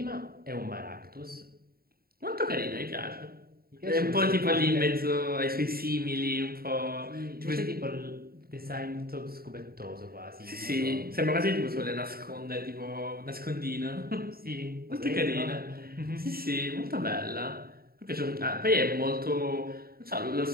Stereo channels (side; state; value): left; late; 0.44 ms